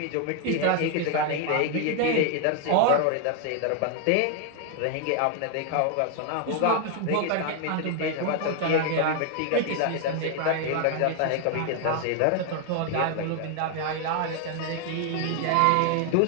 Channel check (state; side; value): different; both; correlation 0.00